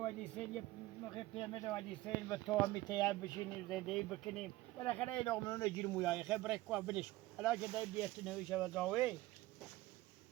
سیل یه موقع پیمه دوادی سیل به تو هم میتیم بشینیم زندگی بکنیم بالاخره این لغمنون رو گیر مویای خبره که بلش حالا که دای بیت نویشه و زاوی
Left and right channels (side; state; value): left; quieter; 18.0 dB